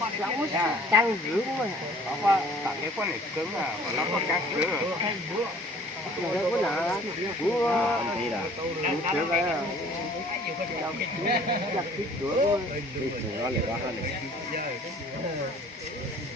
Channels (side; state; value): both; normal; correlation 0.53